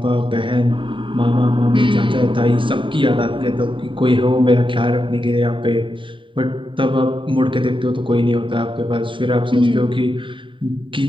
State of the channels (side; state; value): left; late; 0.25 ms